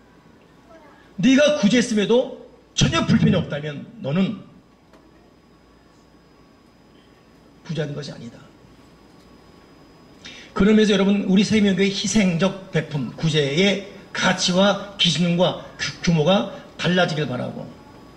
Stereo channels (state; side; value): identical; both; correlation 1.00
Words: 네가 구제했음에도 전혀 불편이 없다면 너는 부자인 것이 아니다. 그러면서 여러분, 우리 세명교의 희생적 베품, 구제의 가치와 기준과 규모가 달라지길 바라고.